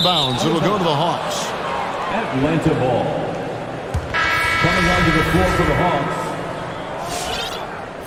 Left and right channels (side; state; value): both; identical; correlation 1.00